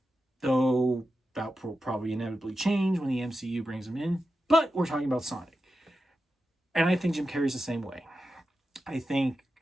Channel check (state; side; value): normal; both; correlation 0.90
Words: Though that will probably inevitably change when the MCU brings him in. But we're talking about Sonic. And I think Jim Carrey's the same way. I think